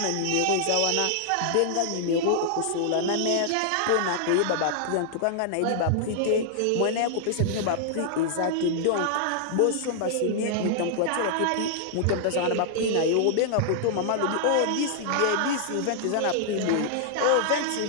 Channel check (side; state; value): both; different; correlation -0.01